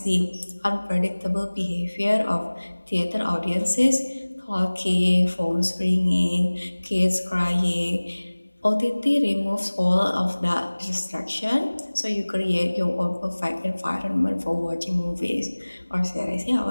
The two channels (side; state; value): both; inverted; correlation -1.00